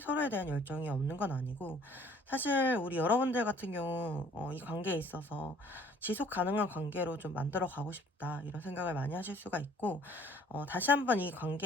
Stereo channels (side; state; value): both; normal; correlation 0.56